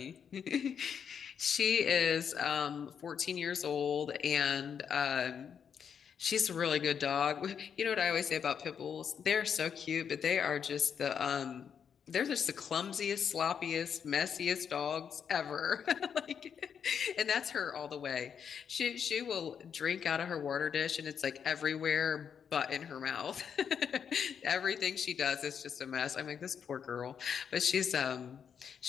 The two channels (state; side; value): quieter; right; 7.4 dB